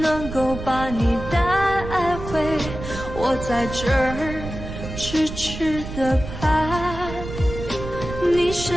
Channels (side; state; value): right; noise; rumble, 9 dB below the sound